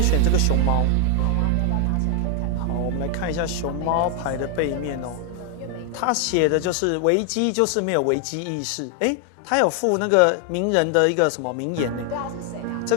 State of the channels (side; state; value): both; different; correlation 0.00